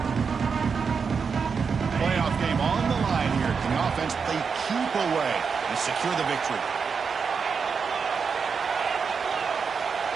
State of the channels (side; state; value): left; quieter; 5.7 dB